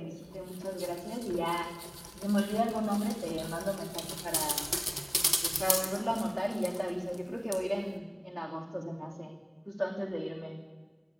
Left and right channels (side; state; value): both; identical; correlation 1.00